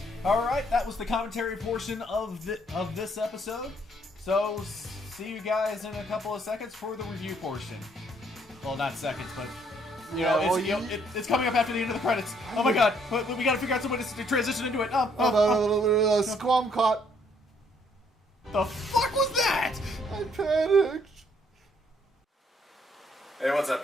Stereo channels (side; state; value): both; normal; correlation 0.67